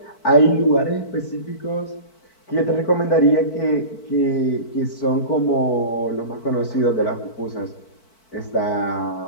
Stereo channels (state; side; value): late; right; 4.5 ms